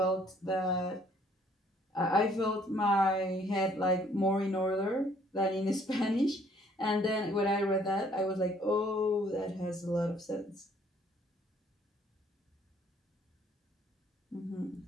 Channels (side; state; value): both; normal; correlation 0.62